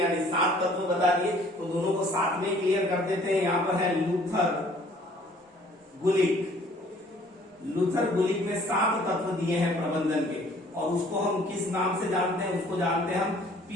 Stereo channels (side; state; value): both; normal; correlation 0.57